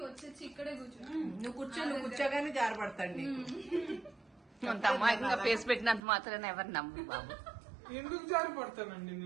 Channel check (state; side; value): drops out; left; at 6.0 s